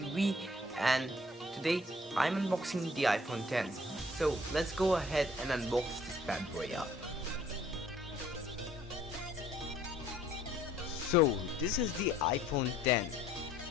and today I'm unboxing the iPhone 10. So let's go ahead and unbox this bad boy up. So this is the iPhone 10.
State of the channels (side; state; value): both; normal; correlation 0.59